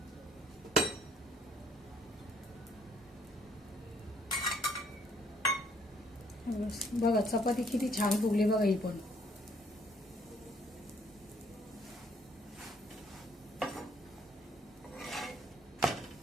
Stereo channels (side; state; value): both; normal; correlation 0.65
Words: बघा चपाती किती छान फुगली बघा ही पण.